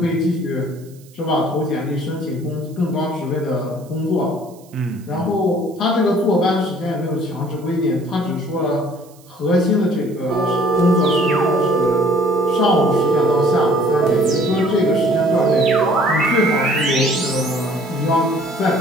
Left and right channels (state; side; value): noise; right; hiss, 27 dB below the sound